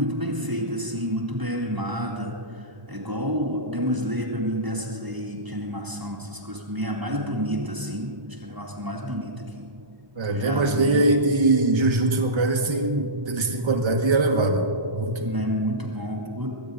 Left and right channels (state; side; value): late; left; 1.3 ms